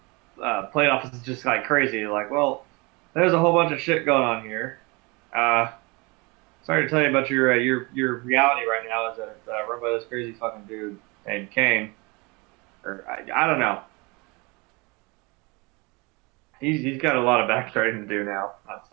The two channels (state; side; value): quieter; left; 27.2 dB